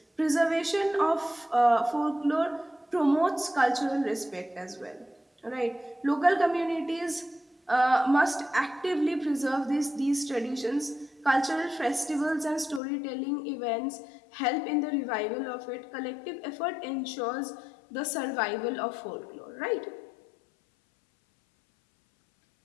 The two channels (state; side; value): drops out; right; at 12.8 s